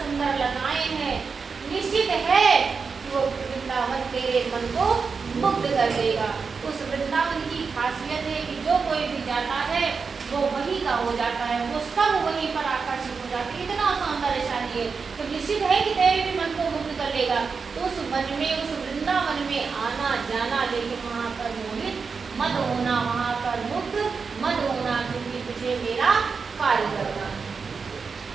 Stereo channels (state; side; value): quieter; left; 5.2 dB